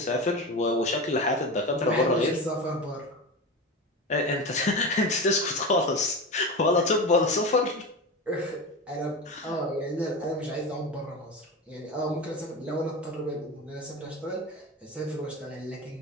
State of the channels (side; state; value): both; normal; correlation 0.24